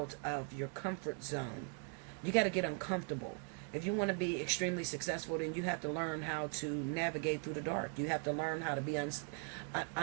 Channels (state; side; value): quieter; left; 38.1 dB